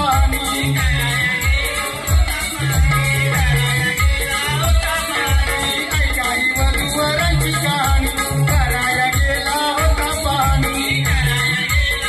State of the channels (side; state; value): both; identical; correlation 1.00